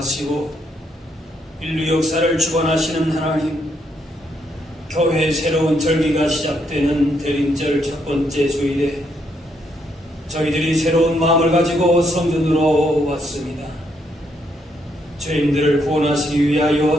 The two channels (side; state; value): both; normal; correlation 0.75